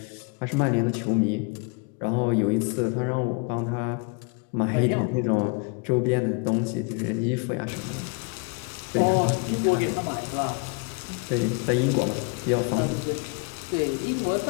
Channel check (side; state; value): right; quieter; 31.9 dB